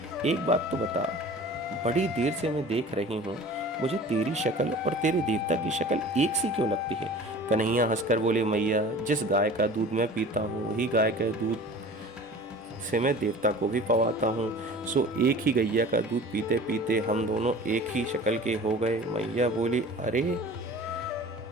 एक बात तो बता, बड़ी देर से मैं देख रही हूँ, मुझे तेरी शक्ल और तेरे देवता की शक्ल एक सी क्यों लगती है? कन्हैया हंसकर बोले, मैया जिस गाय का दूध मैं पीता हूँ, वही गाय के दूध से मैं देवता को भी पवाता हूँ, सो एक ही गैया का दूध पीते पीते हम दोनों एक ही शक्ल के हो गए। मैया बोली, अरे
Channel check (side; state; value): both; normal; correlation 0.42